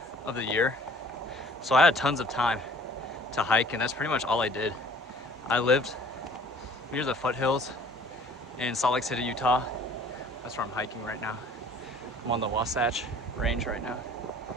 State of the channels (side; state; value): both; normal; correlation 0.52